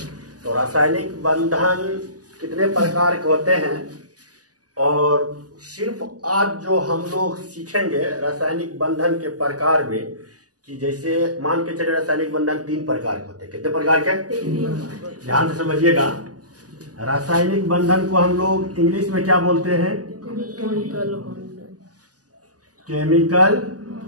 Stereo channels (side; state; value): left; late; 0.67 ms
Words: तो रासायनिक बंधन कितने प्रकार के होते हैं, और सिर्फ आज जो हम लोग सीखेंगे रासायनिक बंधन के प्रकार में, कि जैसे मान के चले रासायनिक बंधन 3 प्रकार के होते हैं। कितने प्रकार के? ध्यान से समझिएगा। रासायनिक बंधन को हम लोग इंग्लिश में क्या बोलते हैं? Chemical